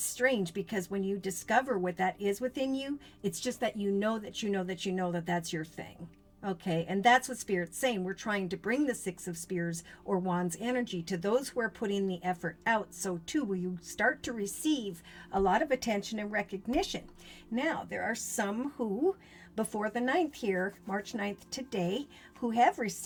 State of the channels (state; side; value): identical; both; correlation 1.00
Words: because when you discover what that is within you, it's just that you know that that's your thing. Okay, and that's what Spirit's saying. We're trying to bring the 6 of Spears or Wands energy to those who are putting the effort out. So too, will you start to receive a lot of attention and recognition. Now, there are some who before the 9th here, March 9th today, who have